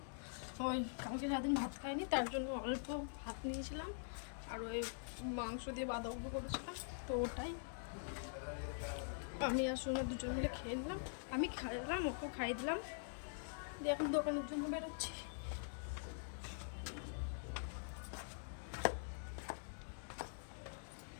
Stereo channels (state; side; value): silent; right; digital silence